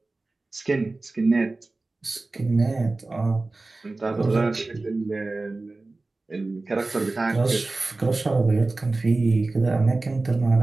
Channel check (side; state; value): left; quieter; 3.3 dB